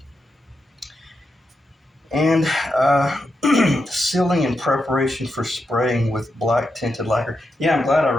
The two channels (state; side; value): normal; both; correlation 0.86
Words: And sealing in preparation for spraying with black tinted lacquer. Yeah, I'm glad I